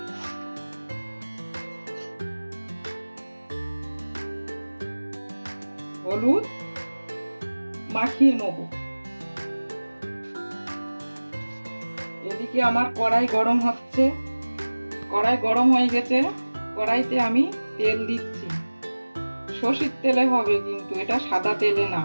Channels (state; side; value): inverted; both; correlation -1.00